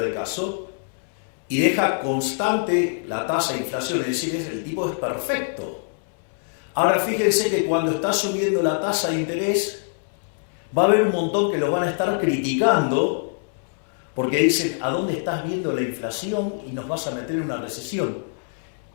el caso, y deja constante la tasa de inflación, es decir, el tipo es perfecto. Ahora fíjense que cuando está subiendo la tasa de interés, va a haber un montón que los van a estar criticando porque dicen, ¿a dónde estás viendo la inflación y nos vas a meter en una recesión?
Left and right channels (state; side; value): silent; right; 63 dB below the other